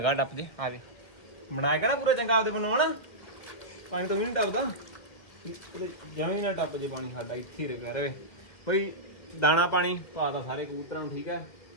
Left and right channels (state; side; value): late; right; 2.1 ms